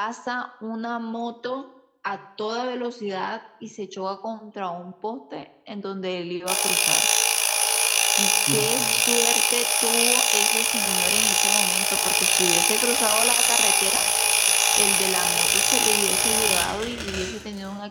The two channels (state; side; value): identical; both; correlation 1.00